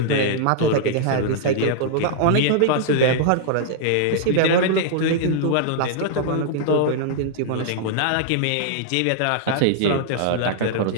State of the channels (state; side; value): different; both; correlation -0.01